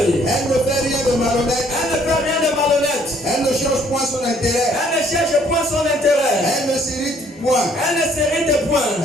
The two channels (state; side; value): normal; both; correlation 0.62